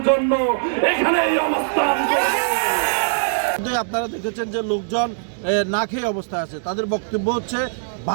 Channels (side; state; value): left; silent; digital silence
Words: জন্য এখানে এই অবস্থান করব। আপনারা দেখেছেন যে লোকজন না খেয়ে অবস্থায় আছে, তাদের বক্তব্য হচ্ছে